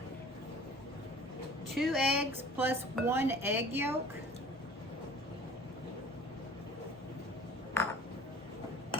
Two eggs plus 1 egg yolk.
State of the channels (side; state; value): both; normal; correlation 0.46